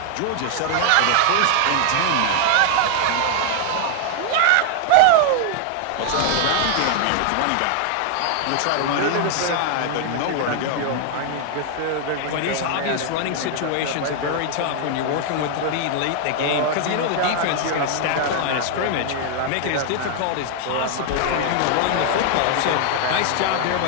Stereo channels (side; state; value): both; different; correlation 0.00